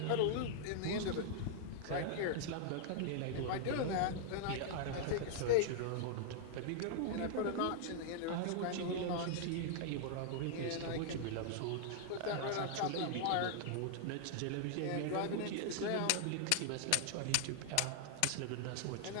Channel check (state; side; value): different; both; correlation -0.01